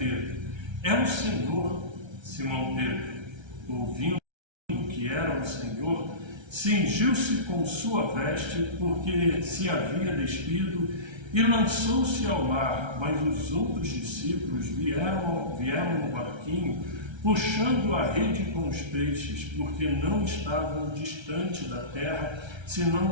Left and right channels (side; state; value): left; late; 1.3 ms